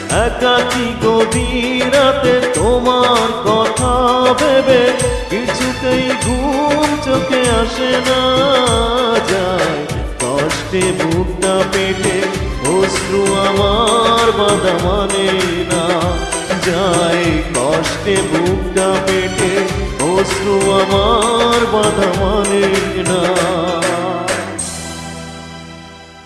একাকী গভীর রাতে তোমার কথা ভেবে কিছুতেই ঘুম চোখে আসে না। যায় কষ্টে বুকটা পেটে অশ্রু আমার বাধা মানে না। যায় কষ্টে বুকটা পেটে অশ্রু আমার বাধা মানে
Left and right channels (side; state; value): both; identical; correlation 1.00